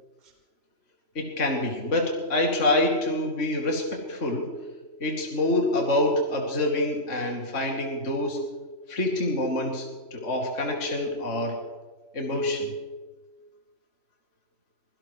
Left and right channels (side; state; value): right; late; 3.0 ms